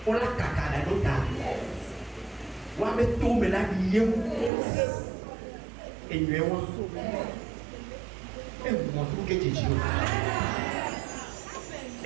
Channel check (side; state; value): left; drops out; at 4.5 s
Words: on la caca la nota wa me tombe la lieu et nous et moi tout que Jésus